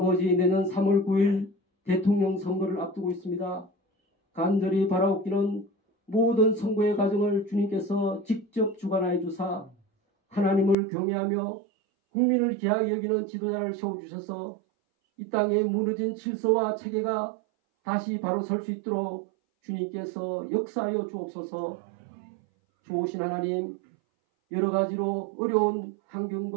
내년 3월 9일 대통령 선거를 앞두고 있습니다. 간절히 바라옵기는 모든 선거의 과정을 주님께서 직접 주관하여 주사 하나님을 경외하며 국민을 귀하게 여기는 지도자를 세워주셔서 이 땅에 무너진 질서와 체계가 다시 바로 설 수 있도록 주님께서 역사하여 주옵소서. 좋으신 하나님, 여러 가지로 어려운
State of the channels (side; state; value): left; drops out; at 10.8 s